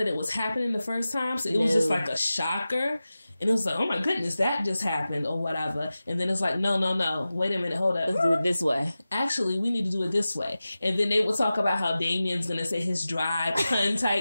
it was happening the first time, so it was just like a shocker. And it was like, oh my goodness, that just happened or whatever. And then it's like, no. Wait a minute, hold up. Let's do it this way. Actually, we need to do it this way. And then they would talk about how Damien's going to say his dry pun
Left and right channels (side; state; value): both; inverted; correlation -0.95